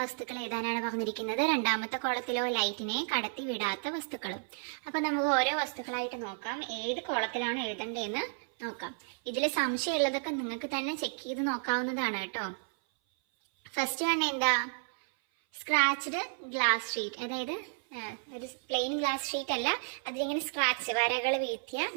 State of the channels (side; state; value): left; silent; 55 dB below the other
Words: വസ്തുക്കൾ എഴുതാനാണ് പറഞ്ഞിരിക്കുന്നത്. രണ്ടാമത്തെ കോളത്തിലോ ലൈറ്റിനെ കടത്തി വിടാത്ത വസ്തുക്കളും. അപ്പോൾ നമുക്ക് ഓരോ വസ്തുക്കളായിട്ട് നോക്കാം. ഏത് കോളത്തിലാണ് എഴുതേണ്ടതെന്ന് നോക്കാം. ഇതിൽ സംശയമുള്ളതൊക്കെ നിങ്ങൾക്ക് തന്നെ ചെക്ക് ചെയ്ത് നോക്കാവുന്നതാണ് കേട്ടോ. ഫസ്റ്റ് വൺ എന്താ? Scratched glass sheet. അതായത് ഒരു പ്ലെയിൻ ഗ്ലാസ് ഷീറ്റ് അല്ല, അതിലിങ്ങനെ സ്ക്രാച്ച് വരകൾ വീഴ്ത്തിയ